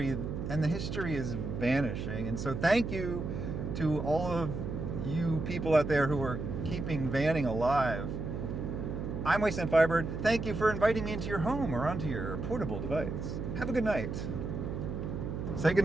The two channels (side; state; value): right; noise; hum, 4 dB below the sound